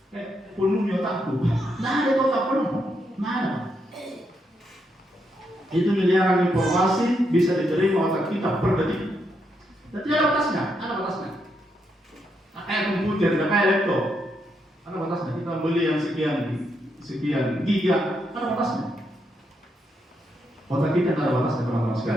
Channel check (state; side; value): normal; both; correlation 0.80